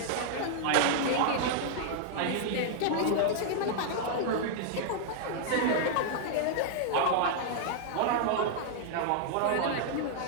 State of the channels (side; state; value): both; different; correlation -0.01